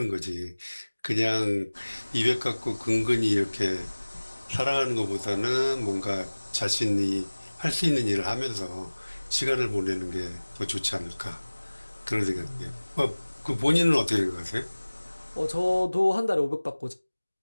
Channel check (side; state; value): both; inverted; correlation -1.00